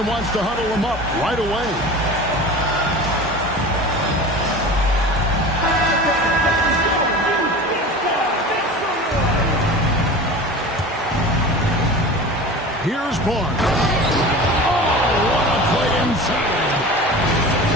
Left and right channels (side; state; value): both; normal; correlation 0.35